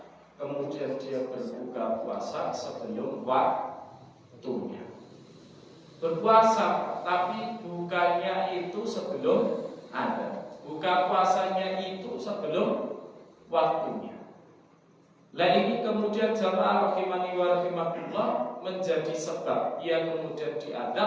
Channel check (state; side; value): identical; both; correlation 1.00